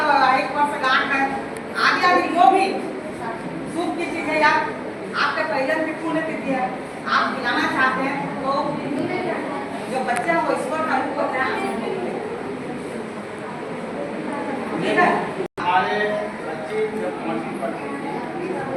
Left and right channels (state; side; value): identical; both; correlation 1.00